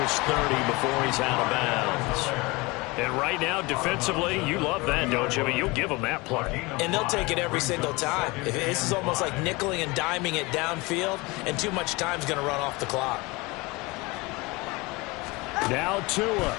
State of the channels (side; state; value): right; quieter; 24.2 dB